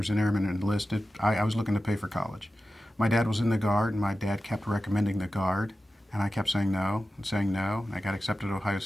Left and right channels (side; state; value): both; normal; correlation 0.93